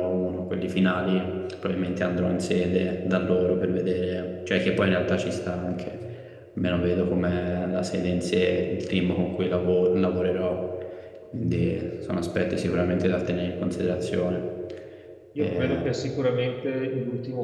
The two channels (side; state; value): both; identical; correlation 1.00